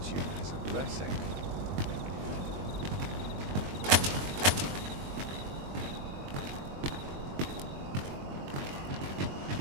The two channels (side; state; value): left; late; 21 ms